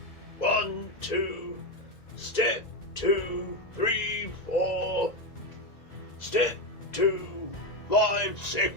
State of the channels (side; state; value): right; late; 1.9 ms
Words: 1, 2, step 2, 3, 4, step 2, 5,